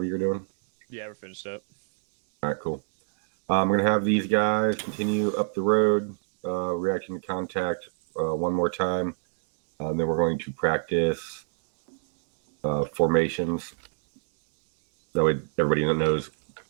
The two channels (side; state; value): left; silent; digital silence